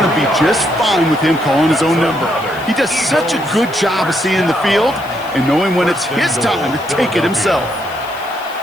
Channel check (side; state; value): left; noise; hiss, 22 dB below the sound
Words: to be just fine with him calling his own number. He does such a good job of seeing the field and knowing when it's his time to take it himself.